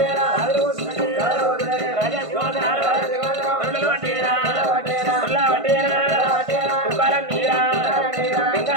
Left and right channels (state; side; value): late; left; 1.5 ms